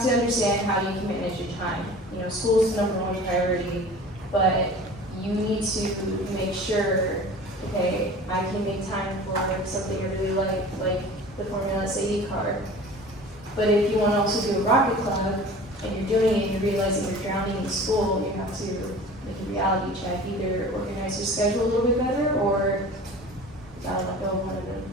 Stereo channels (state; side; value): normal; both; correlation 0.41